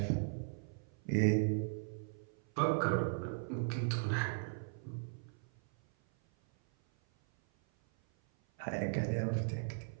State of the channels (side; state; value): left; silent; 53 dB below the other